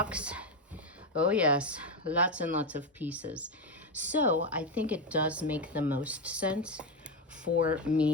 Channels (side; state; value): both; normal; correlation 0.11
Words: oh yes, lots and lots of pieces. So I think it does make the most sense for